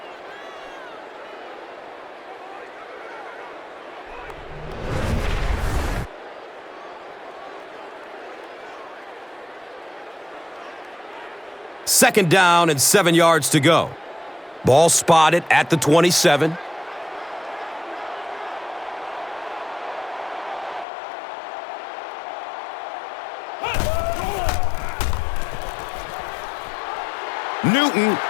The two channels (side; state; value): right; drops out; at 20.9 s